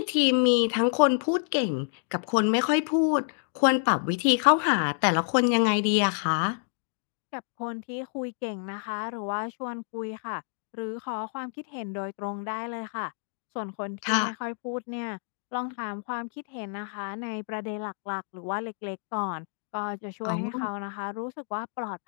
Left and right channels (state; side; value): silent; right; 59 dB below the other